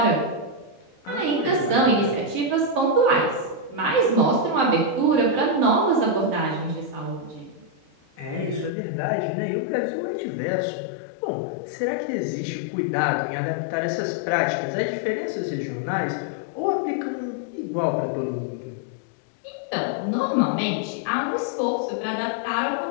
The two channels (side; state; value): right; drops out; at 8.7 s